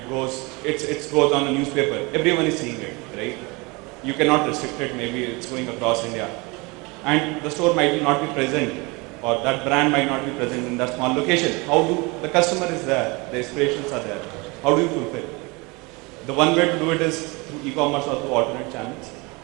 goes on a newspaper. Everyone is seeing it, right? You cannot restrict it, maybe it's going across India. And the store might not be present, or that brand might not be present in that small location. The customer is there, the aspirations are there. How do you fulfill? The one way to do it is through e-commerce or through alternate channels.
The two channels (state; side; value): quieter; left; 26.6 dB